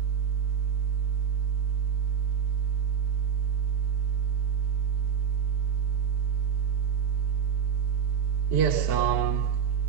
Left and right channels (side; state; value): left; quieter; 7.8 dB